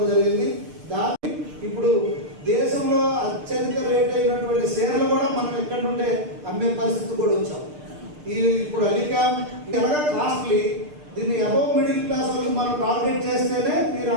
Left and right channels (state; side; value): late; left; 6.7 ms